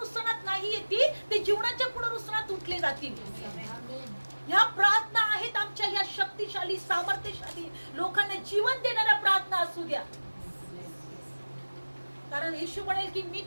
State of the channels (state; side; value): inverted; both; correlation -1.00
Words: नाही येतील, ते जीवनाच्या पुनरुत्थानात उठले जातील. ह्या प्रार्थना आहेत आमच्या, ह्या शक्तिशाली, सामर्थ्यशाली, लोकांना जीवन देणाऱ्या प्रार्थना असू द्या. कारण येशू म्हणेल की मी